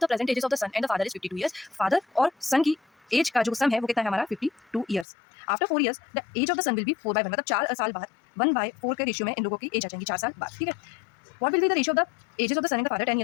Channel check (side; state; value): right; drops out; at 5.1 s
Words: the present ages of the son and the father is 52 years. Father और सन की एज का जो सम है वो कितना है हमारा 52 years. After 4 years the age of the son will be 4/1, मतलब 4 साल बाद 1/4 के रेशियो में इन लोगों की एज आ जाएंगी 4 साल बाद। ठीक है, what will be the ratio of the ages of the son and the father 10